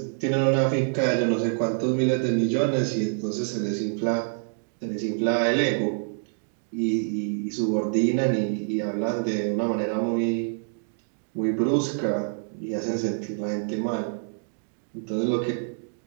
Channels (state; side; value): silent; left; digital silence